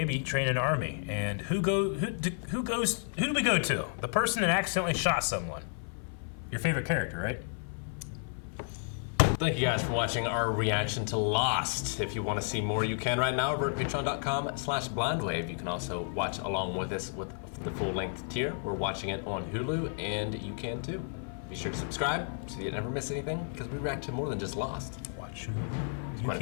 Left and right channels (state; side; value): silent; right; 56 dB below the other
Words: train an army. And who do we go to? The person that accidentally shot someone. Your favorite character, right? Thank you guys for watching our reaction to Lost. If you want to see more, you can right now over at patreon.com/blindwave. You can also watch along with us with the full-length tier. We're watching it on Hulu, and you can too. Be sure to subscribe so you never miss anything, because we react to more than just Lost. Watch Hulu. You